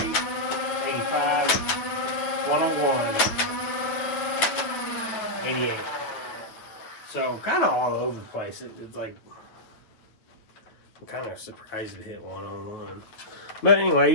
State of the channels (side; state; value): right; late; 9.0 ms